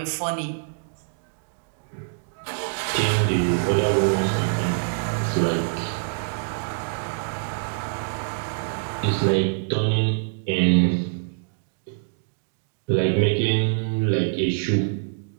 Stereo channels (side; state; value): left; silent; digital silence